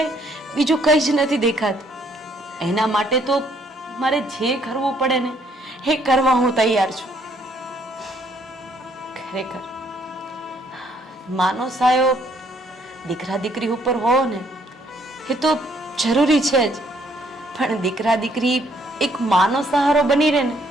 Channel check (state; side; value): normal; both; correlation 0.67